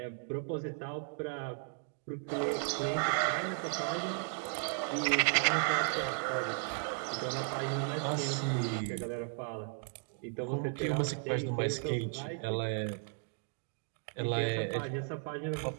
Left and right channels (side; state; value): left; silent; 54 dB below the other